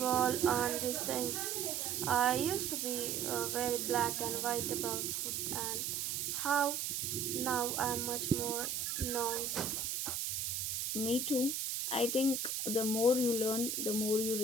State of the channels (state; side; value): noise; right; hiss, 1 dB below the sound